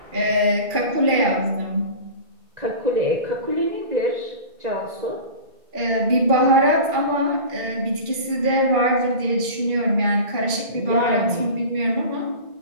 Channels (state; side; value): late; left; 2.3 ms